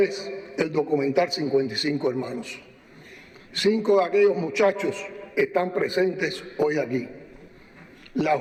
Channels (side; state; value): both; identical; correlation 1.00